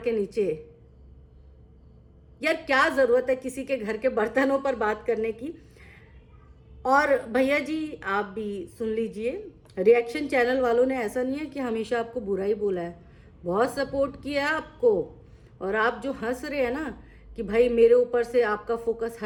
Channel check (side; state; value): both; identical; correlation 1.00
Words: नीचे। यार क्या जरूरत है किसी के घर के बर्तनों पर बात करने की। और भैया जी आप भी सुन लीजिए, रिएक्शन चैनल वालों ने ऐसा नहीं है कि हमेशा आपको बुरा ही बोला है, बहुत सपोर्ट किया है आपको। और आप जो हंस रहे हैं ना कि भाई मेरे ऊपर से आपका फोकस